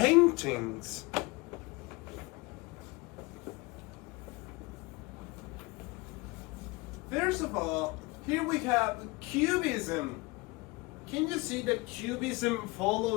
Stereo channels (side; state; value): right; quieter; 24.5 dB